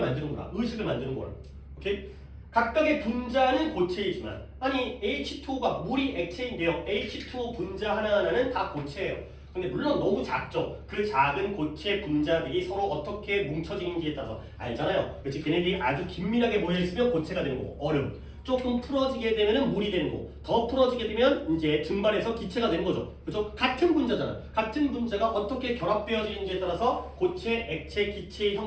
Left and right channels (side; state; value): both; identical; correlation 1.00